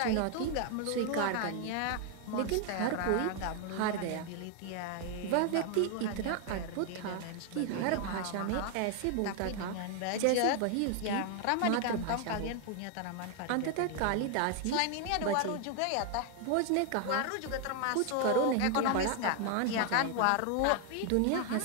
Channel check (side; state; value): both; different; correlation 0.00